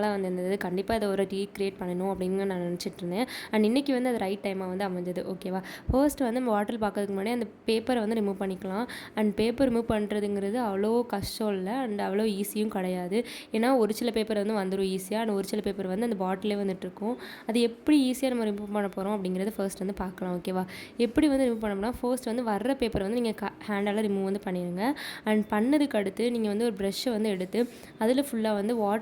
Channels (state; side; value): identical; both; correlation 1.00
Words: வந்து இருந்தது. கண்டிப்பாக இதை ஒரு ரீக்ரியேட் பண்ணணும் அப்படின்னு நான் நினச்சிட்டு இருந்தேன். அண்ட் இன்றைக்கி வந்து அது ரைட் டைமாக வந்து அமைஞ்சது. ஓகேவா, ஃபர்ஸ்ட் வந்து நம்ம பாட்டில் பார்க்கறதுக்கு முன்னாடி அந்த பேப்பரை வந்து ரிமூவ் பண்ணிக்கலாம். அண்ட் பேப்பர் ரிமூவ் பண்ணுறதுங்கிறது அவ்வளோ கஷ்டம் இல்லை, அண்ட் அவ்வளோ ஈஸியும் கிடையாது. ஏன்னா ஒரு சில பேப்பர் வந்து வந்துடும் ஈஸியாக, அண்ட் ஒரு சில பேப்பர் வந்து அந்த பாட்டிலே வந்துட்டுருக்கும். அது எப்படி ஈஸியாக நம்ம ரிமூவ் பண்ண போகிறோம் அப்படிங்கிறது ஃபர்ஸ்ட் வந்து பார்க்கலாம். ஓகேவா, எப்படி வந்து ரிமூவ் பண்ணோம்னா, ஃபர்ஸ்ட் வந்து வர்ற பேப்பரை வந்து நீங்கள் ஹேண்டால் ரிமூவ் வந்து பண்ணிடுங்க. அண்ட் பண்ணதுக்கு அடுத்து நீங்கள் வந்து ஒரு ப்ரெஷ்ஷை வந்து எடுத்து அதில் ஃபுல்லாக வந்து